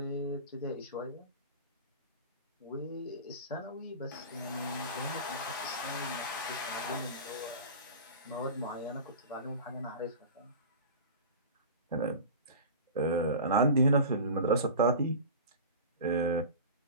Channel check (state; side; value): inverted; both; correlation -0.33